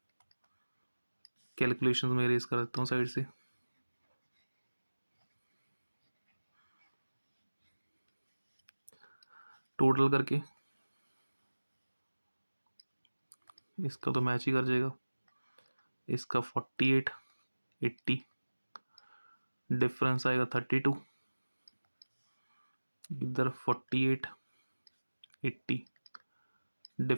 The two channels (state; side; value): inverted; both; correlation -1.00